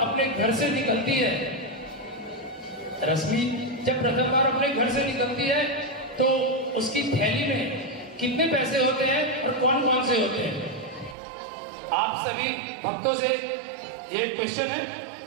अपने घर से निकलती है, रश्मि जब प्रथम बार अपने घर से निकलती है तो उसकी थैली में कितने पैसे होते हैं और कौन कौन से होते हैं? आप सभी भक्तों से ये क्वेश्चन है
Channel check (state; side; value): drops out; left; at 11.2 s